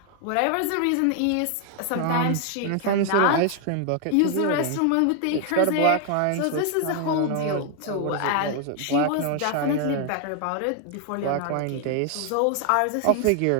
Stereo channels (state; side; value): different; both; correlation 0.00